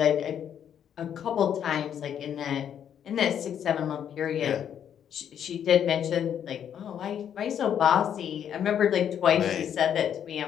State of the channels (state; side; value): quieter; right; 9.1 dB